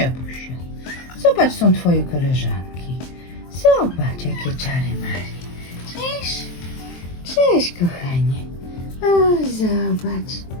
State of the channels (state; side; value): late; right; 23 ms